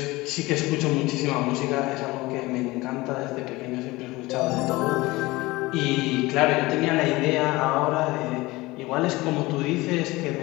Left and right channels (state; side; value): quieter; right; 20.8 dB